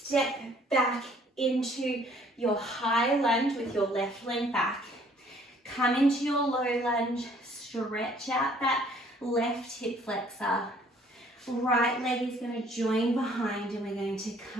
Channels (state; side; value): normal; both; correlation 0.59